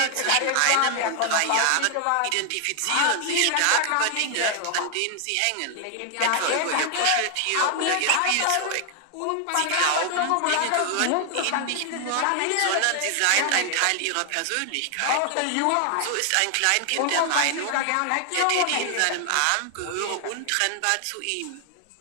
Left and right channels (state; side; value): different; both; correlation 0.00